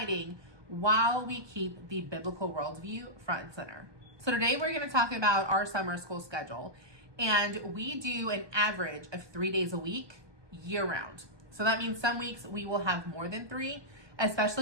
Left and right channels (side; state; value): left; late; 1.2 ms